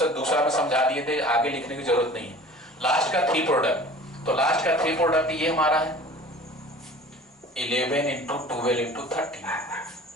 दूसरा में समझा दिए थे, आगे लिखने की जरूरत नहीं है। लास्ट का 3 प्रोडक्ट, तो लास्ट का 3 प्रोडक्ट ये हमारा है 11 इंटू 12 इंटू 13,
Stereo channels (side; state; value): both; normal; correlation 0.44